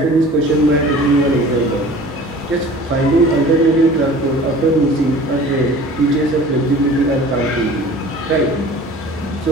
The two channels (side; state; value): both; normal; correlation 0.44